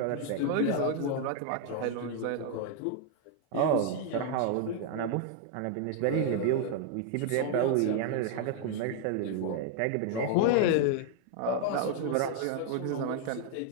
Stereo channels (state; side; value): different; both; correlation 0.00